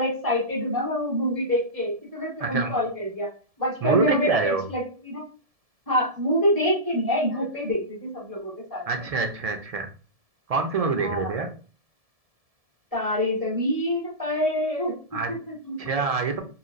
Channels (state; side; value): late; left; 1.7 ms